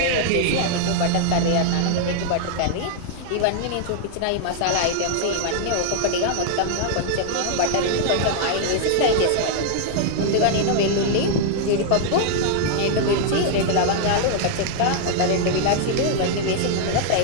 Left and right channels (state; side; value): different; both; correlation 0.00